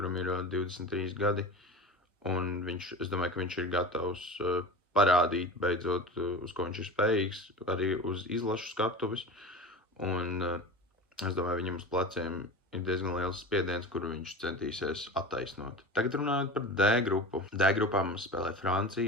ir 23 gadi, un es domāju, ka viņš ir gatavs parādīt beidzot, uz ko viņš ir spējīgs, arī uz izlašu skatuves, un es domāju, viņam uz pleciem ir diezgan liels spiediens, kuru viņš centīsies attaisnot. Tagad runājot par D grupu. D grupā mums spēlē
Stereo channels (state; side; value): normal; both; correlation 0.32